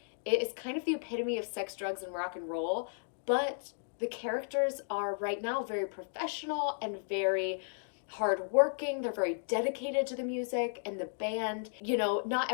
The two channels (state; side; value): silent; right; digital silence